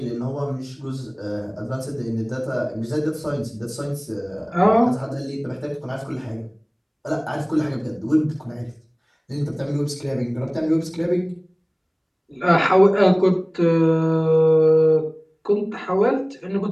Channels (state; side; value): identical; both; correlation 1.00